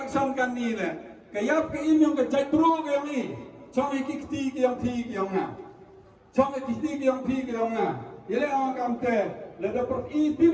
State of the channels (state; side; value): identical; both; correlation 1.00